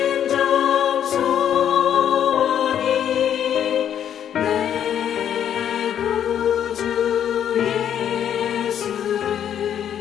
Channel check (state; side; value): quieter; right; 9.6 dB